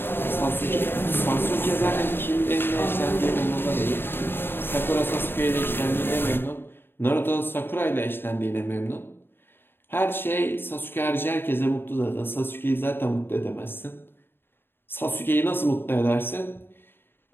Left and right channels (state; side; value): late; right; 0.10 ms